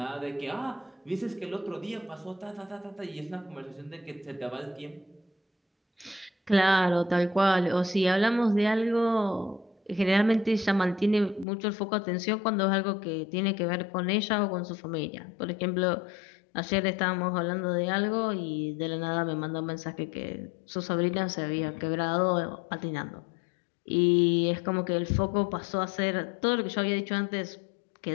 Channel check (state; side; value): drops out; right; at 11.5 s